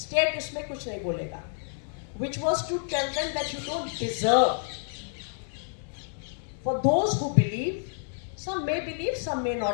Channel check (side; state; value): right; silent; 59 dB below the other